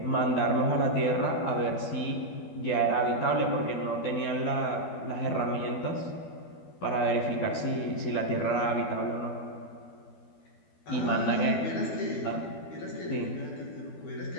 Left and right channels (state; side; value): late; right; 12 ms